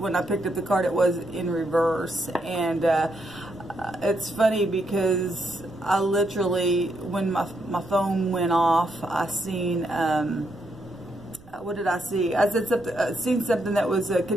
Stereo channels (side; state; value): right; noise; rumble, 22 dB below the sound